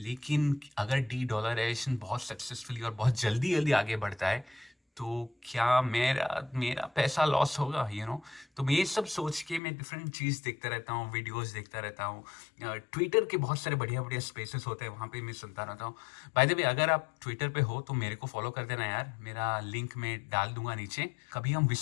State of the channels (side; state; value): right; drops out; at 9.6 s